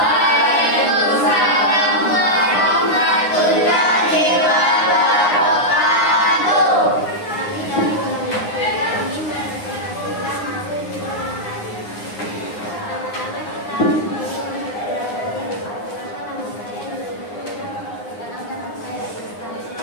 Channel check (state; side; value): late; right; 9.7 ms